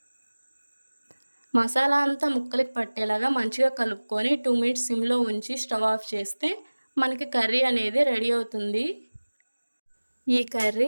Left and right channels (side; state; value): both; inverted; correlation -1.00